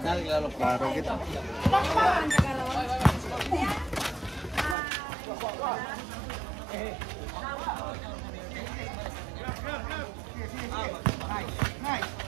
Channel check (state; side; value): drops out; left; at 4.8 s